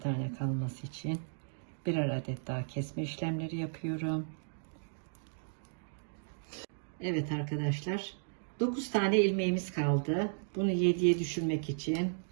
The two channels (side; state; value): left; silent; digital silence